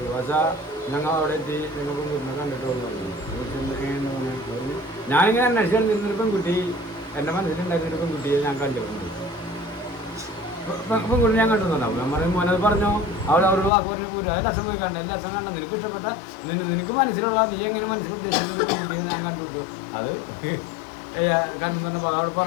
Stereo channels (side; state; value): right; drops out; at 13.7 s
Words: പക്ഷേ ഞങ്ങൾ അവിടെ എത്തി ഞങ്ങൾ പെൺകുട്ടിനെ കണ്ടിട്ട് പറഞ്ഞു. ഞാനിങ്ങനെ അന്വേഷിക്കാൻ നിന്നൊരു പെൺകുട്ടി എൻ്റെ മനസ്സിലുണ്ടായിരുന്നൊരു പെൺകുട്ടിയെ ഞാൻ കണ്ടിട്ടുണ്ട്. പെൺകുട്ടി ഞാൻ കണ്ടുന്നുണ്ടാവും. നമ്മൾ മോനത് പറഞ്ഞോ അവരോട് വാക്ക് പറഞ്ഞ് പോരും. അത് ലക്ഷം പോയി കണ്ട ലക്ഷം കണ്ട നിനക്ക് ഇഷ്ടപ്പെട്ട നിനക്ക് മനസ്സിലുള്ള നീ എങ്ങനെ മനസ്സിൽ ഉദ്ദേശിക്കുന്ന പെൺകുട്ടിയെ ഞാൻ കണ്ടുവിട്ടു. അത് കണ്ടു പറഞ്ഞപ്പോൾ അവിടെ